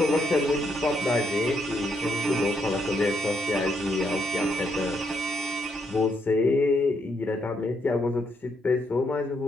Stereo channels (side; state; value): both; normal; correlation 0.76